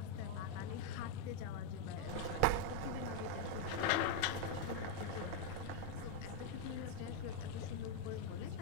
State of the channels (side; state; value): both; different; correlation 0.01